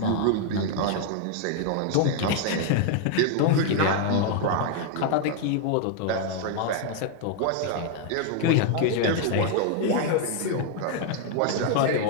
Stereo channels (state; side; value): different; both; correlation 0.00